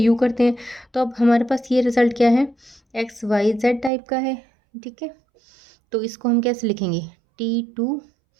करते हैं। तो अब हमारे पास ये रिजल्ट क्या है, XYZ टाइप का है, ठीक है। तो इसको हम कैसे लिखेंगे, T2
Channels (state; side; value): drops out; left; at 3.9 s